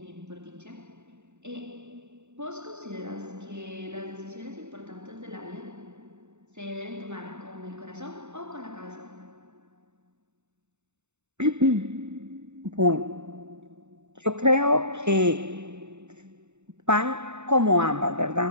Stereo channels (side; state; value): left; late; 0.83 ms